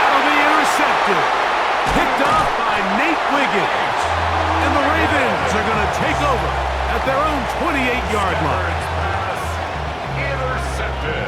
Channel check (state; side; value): noise; left; hum, 27 dB below the sound